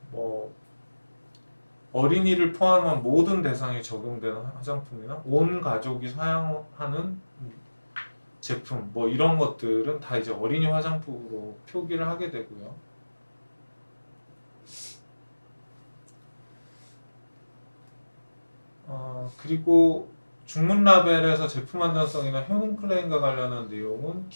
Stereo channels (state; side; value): inverted; both; correlation -1.00